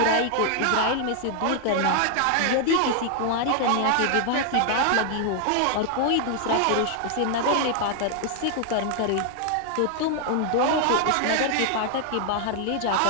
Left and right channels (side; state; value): both; different; correlation 0.00